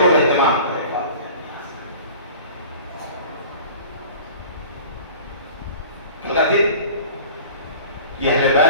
اہتمام کریں. کل کا دن یہ اہل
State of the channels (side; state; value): both; inverted; correlation -0.42